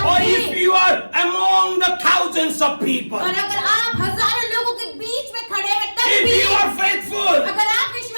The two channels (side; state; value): both; inverted; correlation -1.00